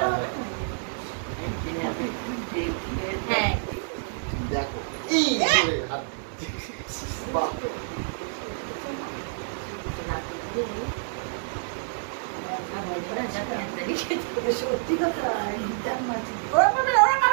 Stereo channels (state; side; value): silent; left; 60 dB below the other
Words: হবে হ্যাঁ দেখো এই যে হাত। বাহ, সত্যি কথা গিটার মাঝে